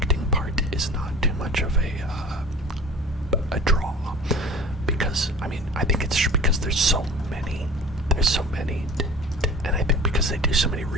part is not too much of a draw, because I think it's because there's so many, and I think because they do so many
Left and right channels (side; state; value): both; normal; correlation 0.40